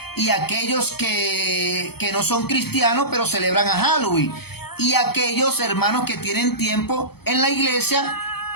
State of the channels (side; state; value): right; late; 0.96 ms